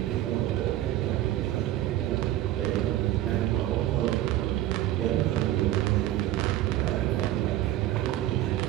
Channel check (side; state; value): left; quieter; 14.0 dB